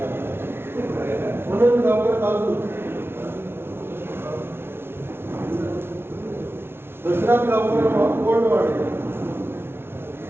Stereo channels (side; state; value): left; late; 0.12 ms